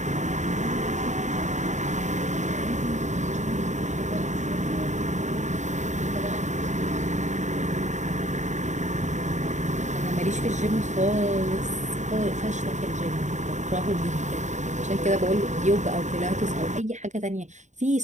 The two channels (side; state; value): left; late; 0.34 ms